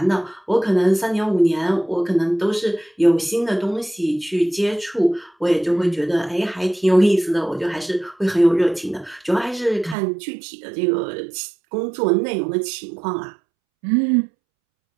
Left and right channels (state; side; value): drops out; left; at 10.0 s